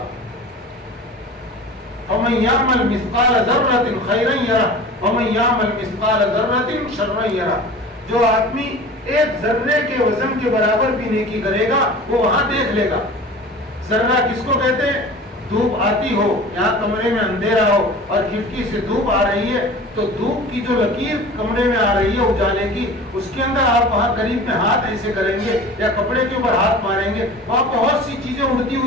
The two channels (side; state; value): both; normal; correlation 0.38